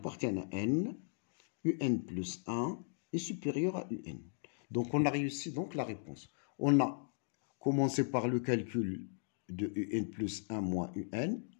à n, UN plus 1 est supérieur à UN. Donc, on a réussi donc la réponse. On a commencé par le calcul de UN plus 1 moins UN.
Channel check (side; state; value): right; silent; digital silence